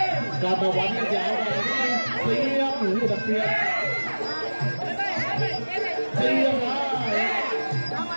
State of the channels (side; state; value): both; inverted; correlation -1.00